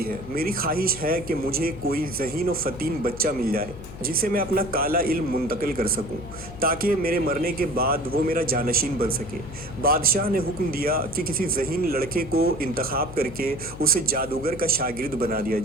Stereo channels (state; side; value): noise; left; hum, 13 dB below the sound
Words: ہے۔ میری خواہش ہے کہ مجھے کوئی ذہین و فطین بچہ مل جائے جسے میں اپنا کالا علم منتقل کر سکوں تاکہ میرے مرنے کے بعد وہ میرا جانشین بن سکے۔ بادشاہ نے حکم دیا کہ کسی ذہین لڑکے کو انتخاب کر کے اسے جادوگر کا شاگرد بنا دیا